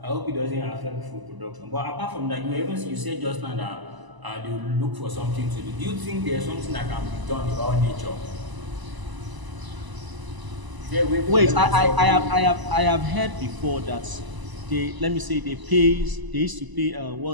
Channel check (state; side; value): late; left; 1.0 ms